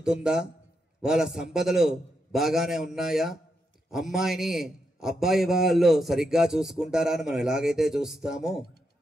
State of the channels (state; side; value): normal; both; correlation 0.83